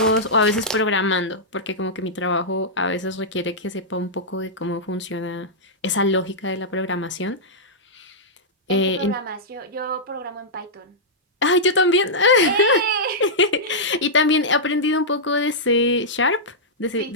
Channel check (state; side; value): normal; both; correlation -0.10